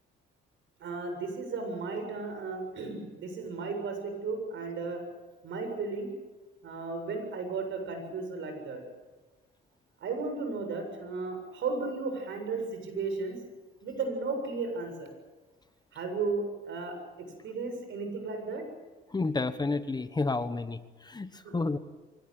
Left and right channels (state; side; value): normal; both; correlation 0.44